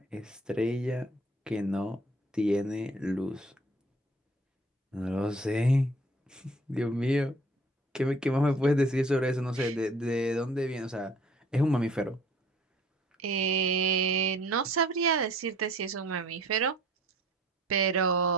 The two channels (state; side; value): normal; both; correlation 0.53